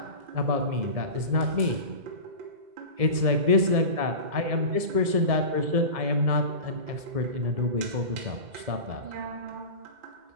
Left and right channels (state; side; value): late; left; 1.7 ms